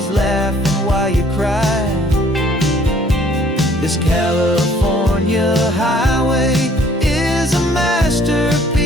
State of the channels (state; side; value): normal; both; correlation 0.59